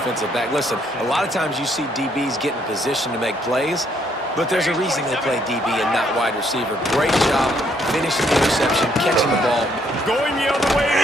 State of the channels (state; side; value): normal; both; correlation 0.70